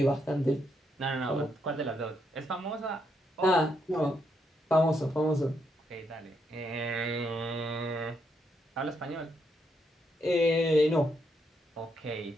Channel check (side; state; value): both; normal; correlation 0.78